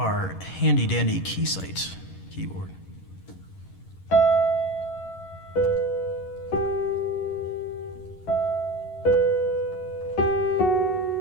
handy dandy Keysight keyboard.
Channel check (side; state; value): right; late; 11 ms